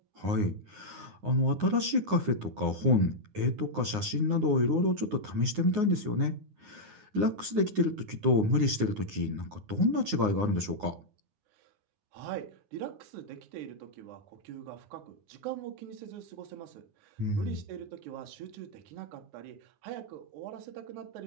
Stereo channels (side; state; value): left; late; 9.6 ms